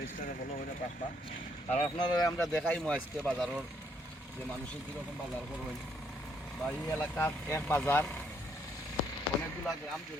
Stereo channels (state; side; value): normal; both; correlation 0.71